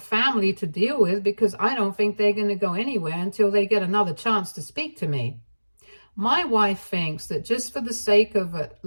to deal with because I don't think they're going to go anywhere until they get another chance to speak to me. My wife thinks that just for the sake of at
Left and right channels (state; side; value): inverted; both; correlation -1.00